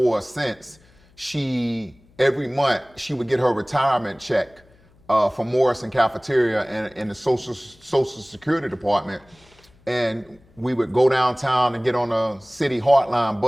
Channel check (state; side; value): noise; left; hum, 30 dB below the sound